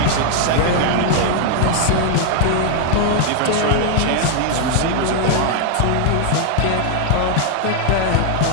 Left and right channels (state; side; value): different; both; correlation 0.00